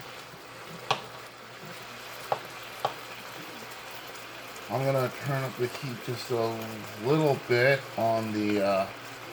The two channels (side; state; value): both; identical; correlation 1.00